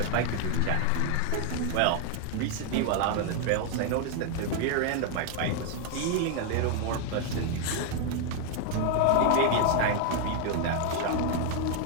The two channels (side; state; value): both; different; correlation 0.00